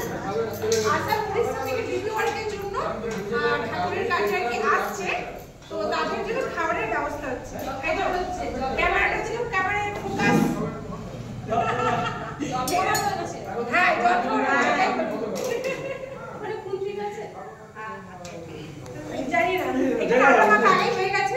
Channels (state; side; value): identical; both; correlation 1.00